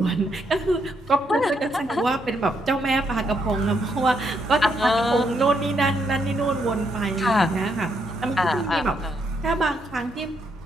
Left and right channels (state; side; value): normal; both; correlation 0.76